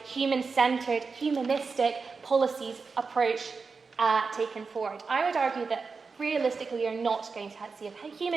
human-centered, humanistic policies approach taken forward? I would argue that realistically we are not going to see a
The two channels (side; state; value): left; quieter; 4.7 dB